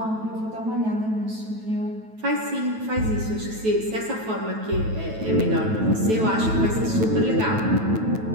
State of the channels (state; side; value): late; left; 9.2 ms